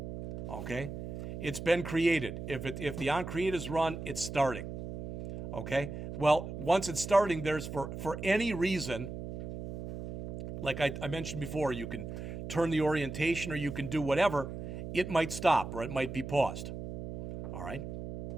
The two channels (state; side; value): noise; right; hum, 8 dB below the sound